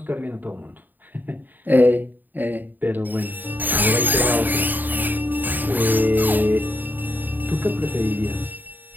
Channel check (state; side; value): late; left; 0.089 ms